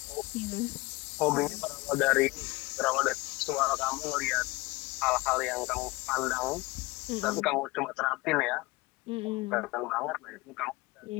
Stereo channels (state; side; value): quieter; right; 22.4 dB